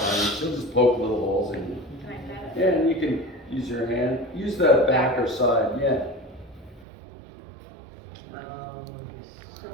you. She'll just poke little holes in you. Yeah, and you can use your hand. Use the back or side, yeah.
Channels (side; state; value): left; drops out; at 6.9 s